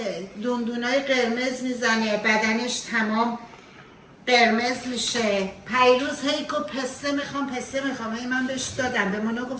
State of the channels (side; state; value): both; identical; correlation 1.00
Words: دندونای قرمز میزنه. بدنش تمام قرمز میشه. پیروز هیکو پسته میخوام. هی من بهش دادم. به مانا